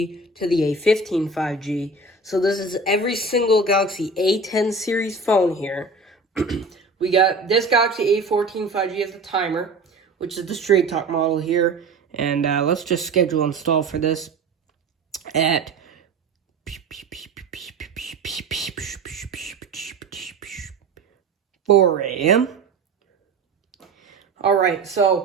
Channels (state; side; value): quieter; left; 3.6 dB